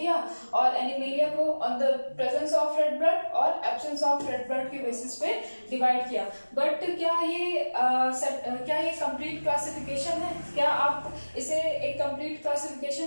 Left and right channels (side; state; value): both; inverted; correlation -1.00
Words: और एनिमेलिया को on the presence of red blood और एब्सेंस ऑफ रेड ब्लड के बेसिस पे डिवाइड किया। बट क्या ये कंप्लीट क्लासिफिकेशन है? क्या आप इसे एक कंप्लीट